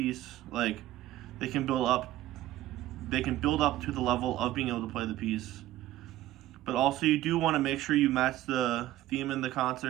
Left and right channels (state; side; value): quieter; left; 14.7 dB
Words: they can build up to the level of being able to play the piece. But also you do want to make sure you match the theme in the